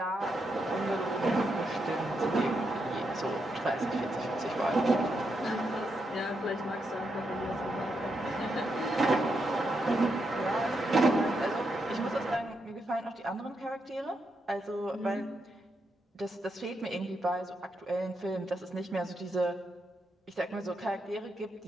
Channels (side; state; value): both; normal; correlation 0.82